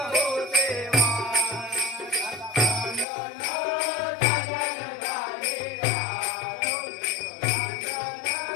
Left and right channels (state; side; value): drops out; right; at 3.1 s